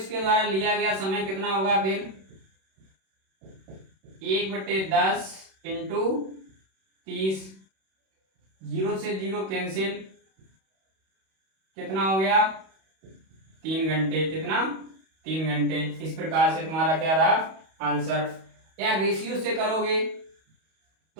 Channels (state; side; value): late; left; 31 ms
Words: द्वारा लिया गया समय कितना होगा, फिर 1/10 इंटू 30, 0 से 0 कैंसिल, कितना हो गया 3 घंटे, कितना 3 घंटे। इस प्रकार से तुम्हारा क्या रहा आंसर। या रेशियो से करोगे